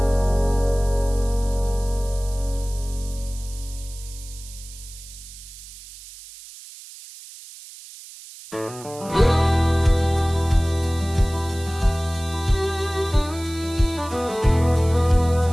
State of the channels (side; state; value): right; noise; hiss, 17 dB below the sound